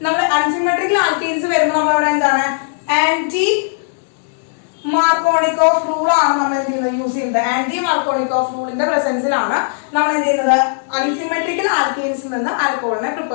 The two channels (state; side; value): silent; right; 68 dB below the other